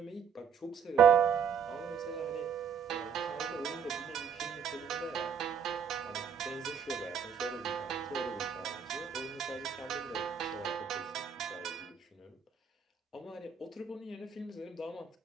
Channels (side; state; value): left; quieter; 7.1 dB